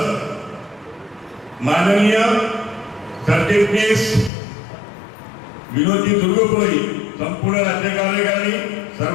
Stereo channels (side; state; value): right; drops out; at 4.3 s